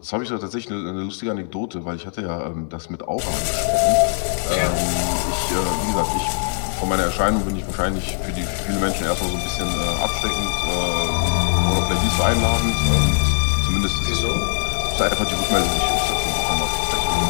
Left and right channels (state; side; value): silent; right; digital silence